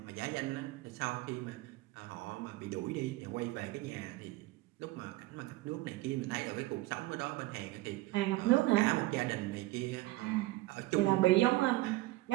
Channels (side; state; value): left; quieter; 19.2 dB